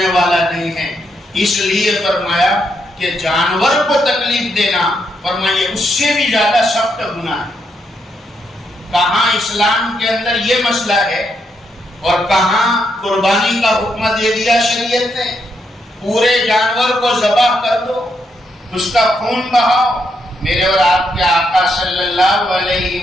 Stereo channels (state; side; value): normal; both; correlation 0.79